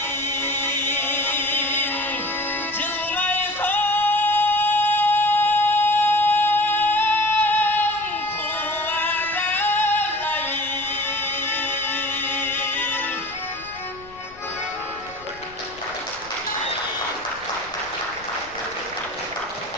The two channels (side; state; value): left; noise; rumble, 23 dB below the sound